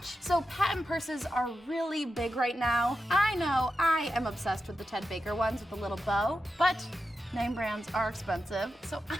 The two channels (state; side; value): normal; both; correlation 0.89